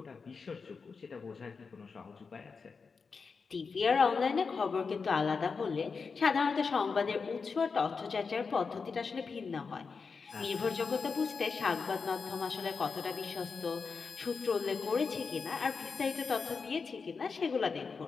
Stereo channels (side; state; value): right; quieter; 5.1 dB